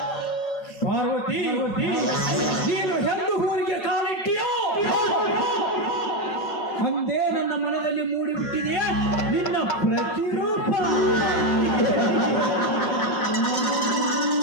ಪಾರ್ವತಿ, ನೀನು ಎಂದು ಊರಿಗೆ ಕಾಲಿಟ್ಟಿಯೋ ಅಂದೇ ನನ್ನ ಮನದಲ್ಲಿ ಮೂಡಿಬಿಟ್ಟಿದೆಯೇ ನಿನ್ನ ಪ್ರತಿರೂಪ.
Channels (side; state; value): right; late; 5.4 ms